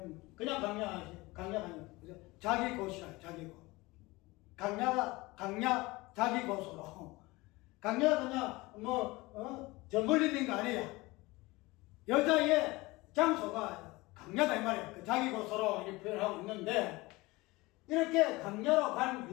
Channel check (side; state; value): right; quieter; 21.9 dB